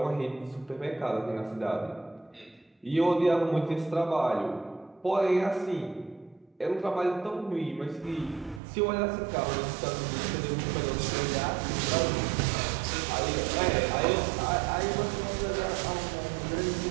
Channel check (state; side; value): drops out; left; at 8.6 s